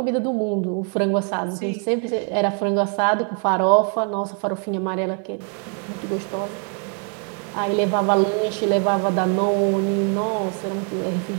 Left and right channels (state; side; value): quieter; left; 38.4 dB